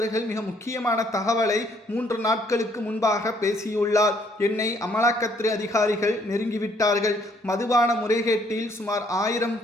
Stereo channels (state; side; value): normal; both; correlation 0.66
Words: மிக முக்கியமான தகவலை 3 நாட்களுக்கு முன்பாக பேசியுள்ளார். என்னை அமலாக்கத்துறை அதிகாரிகள் நெருங்கிவிட்டார்கள். மதுபான முறைகேட்டில் சுமார் 1000